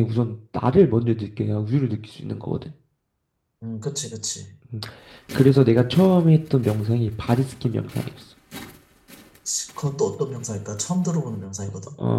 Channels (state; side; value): identical; both; correlation 1.00